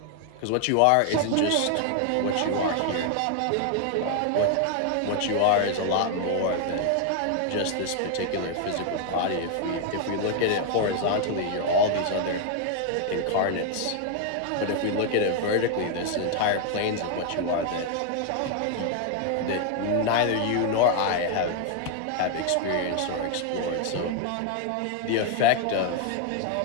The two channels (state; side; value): different; both; correlation 0.00